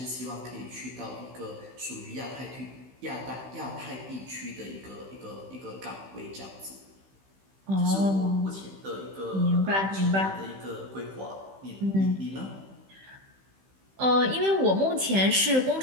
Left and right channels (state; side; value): late; left; 15 ms